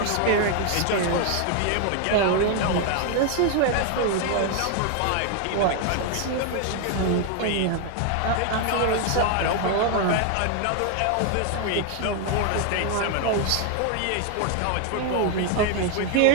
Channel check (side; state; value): both; different; correlation 0.00